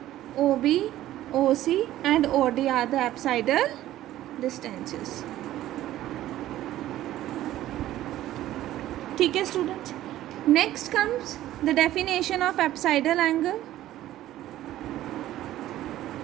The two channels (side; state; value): left; quieter; 14.0 dB